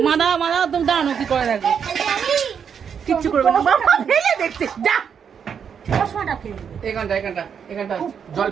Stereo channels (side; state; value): left; quieter; 7.3 dB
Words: মাদা মাদা তুমি দাঁড়ানো, কি করে দেখো, কিচ্ছু করবে না। বাবা ফেলে দেখছে, যা এখানটা এখানটা এখানটা জল,